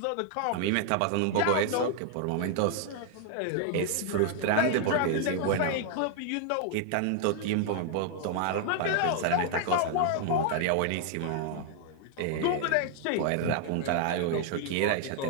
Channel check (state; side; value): different; both; correlation 0.00